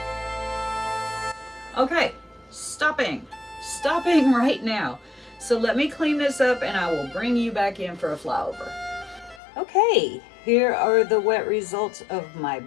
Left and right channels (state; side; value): drops out; right; at 9.4 s